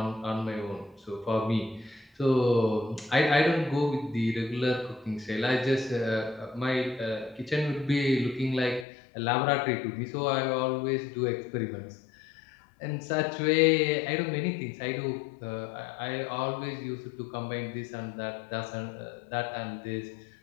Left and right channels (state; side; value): drops out; right; at 8.8 s